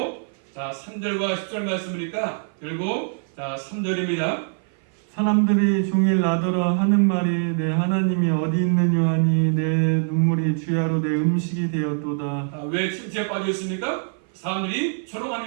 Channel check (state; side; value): silent; left; 56 dB below the other